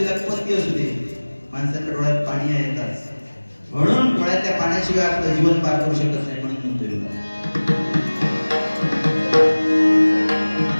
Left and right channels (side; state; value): both; inverted; correlation -1.00